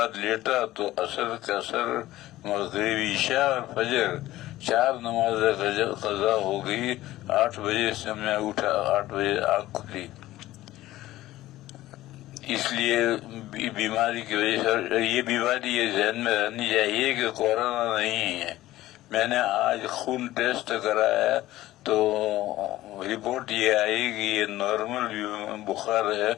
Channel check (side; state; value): right; quieter; 15.9 dB